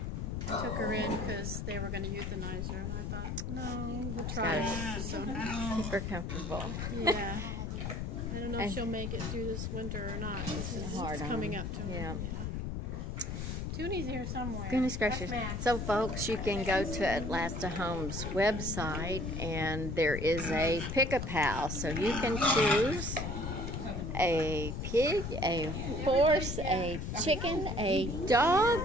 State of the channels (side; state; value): left; noise; rumble, 3 dB below the sound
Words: took her in because they were going to euthanize her, and I thought, no, we'll try. So, super comfortable. Yeah. I don't know if she'll make it through this winter or not. It's coming up to her. Yeah. Tunie's here somewhere. Goodness gracious. So, folks, you can go to Atlasta Homes website, and there is a pickup house. So you can choose a pig, a horse, a chicken, a